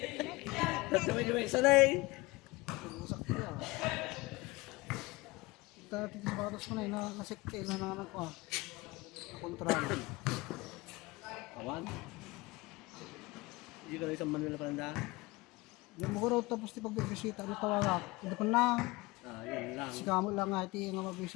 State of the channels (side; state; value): right; quieter; 22.2 dB